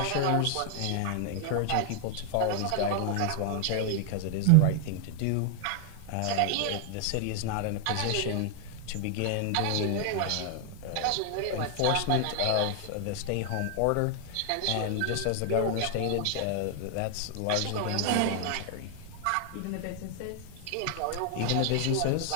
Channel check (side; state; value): both; different; correlation 0.00